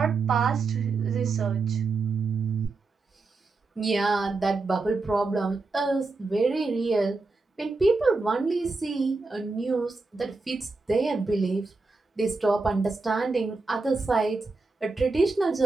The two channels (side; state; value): left; quieter; 3.8 dB